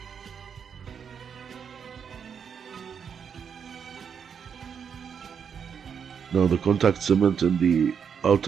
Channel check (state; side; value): quieter; left; 7.1 dB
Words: now the contact cement in the